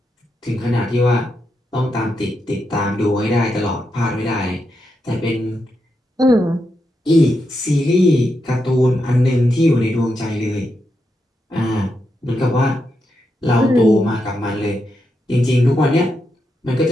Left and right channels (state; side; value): normal; both; correlation 0.84